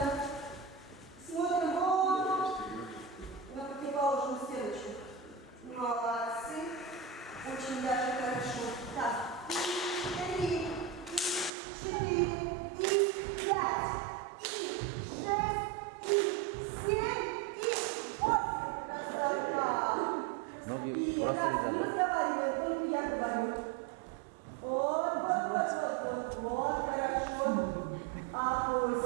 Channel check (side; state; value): left; drops out; at 11.5 s